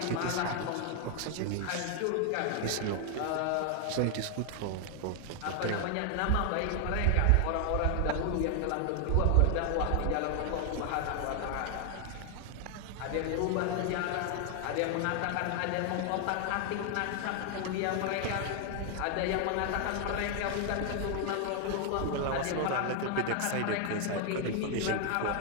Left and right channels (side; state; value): both; different; correlation 0.00